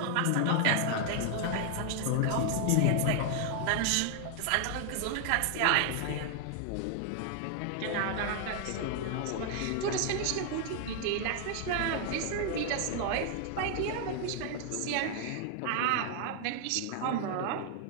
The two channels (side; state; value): both; different; correlation 0.00